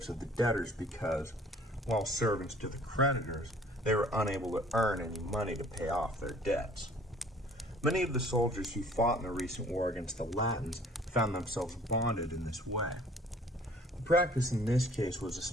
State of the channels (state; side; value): normal; both; correlation 0.54